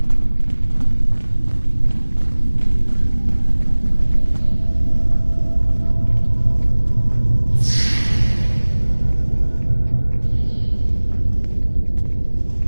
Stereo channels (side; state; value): both; inverted; correlation -1.00